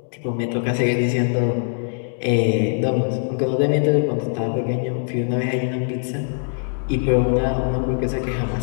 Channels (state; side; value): silent; right; digital silence